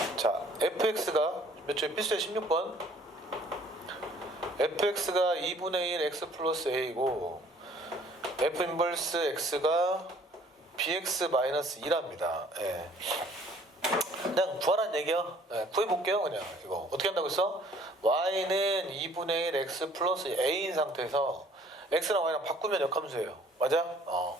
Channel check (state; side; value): normal; both; correlation 0.56